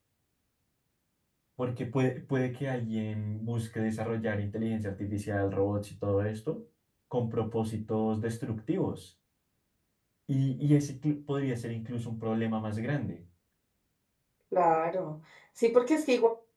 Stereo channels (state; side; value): identical; both; correlation 1.00